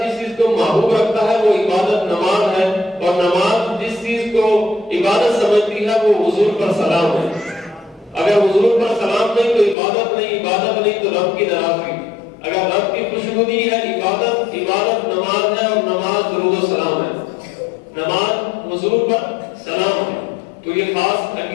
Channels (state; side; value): drops out; right; at 9.8 s